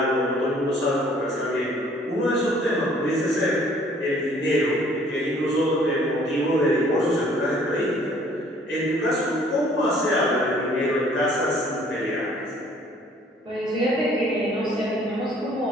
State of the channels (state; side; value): normal; both; correlation 0.58